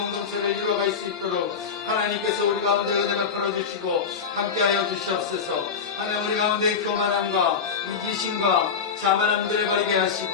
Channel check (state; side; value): quieter; right; 6.1 dB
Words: 이루어갈 수 있도록 하나님께서 우리 가운데 은혜 베풀어 주시고 함께하여 주시옵소서. 하나님 우리 가운데 교만함과 이기심과 자만함들을 버리게